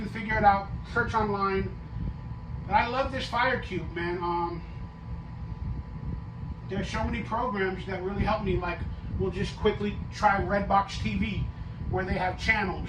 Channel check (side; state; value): both; identical; correlation 1.00